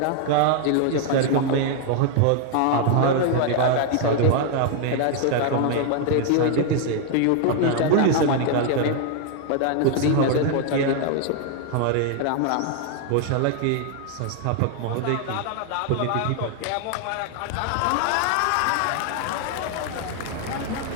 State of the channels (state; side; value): different; both; correlation 0.00